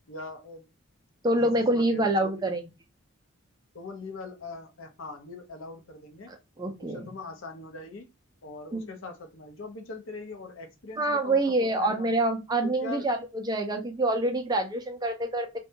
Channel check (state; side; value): normal; both; correlation 0.31